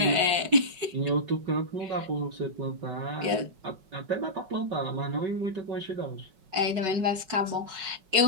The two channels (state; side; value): late; left; 5.4 ms